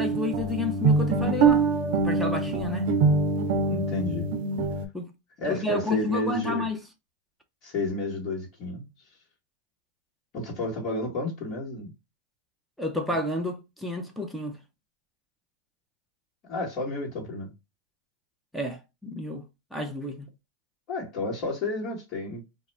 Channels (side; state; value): both; normal; correlation 0.18